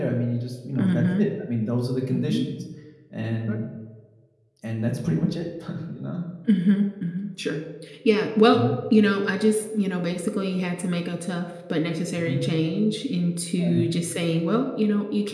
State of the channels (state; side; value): identical; both; correlation 1.00